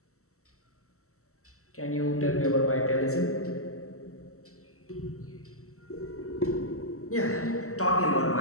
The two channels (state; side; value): late; right; 0.64 ms